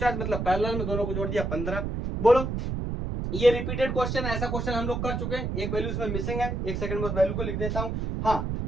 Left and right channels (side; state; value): right; noise; rumble, 2 dB below the sound